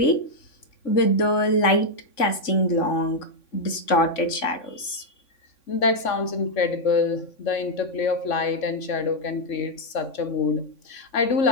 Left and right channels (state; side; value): late; right; 3.5 ms